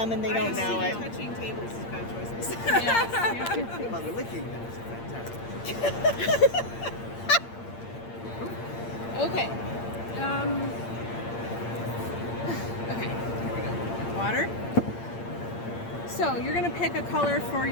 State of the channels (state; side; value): late; right; 8.7 ms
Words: and they don't know it. Touching tables is bad choices. Yes. Well, the licking then is fantastic. Okay. Okay. Here we go. Water. So you're gonna pick a color for